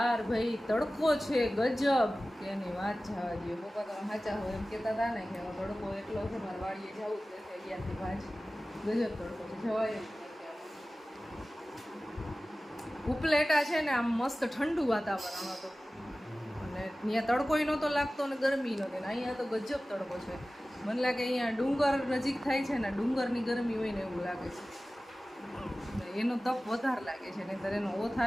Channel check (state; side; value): normal; both; correlation 0.96